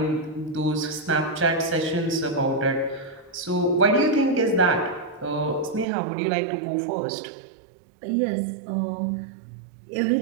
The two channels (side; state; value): left; drops out; at 5.9 s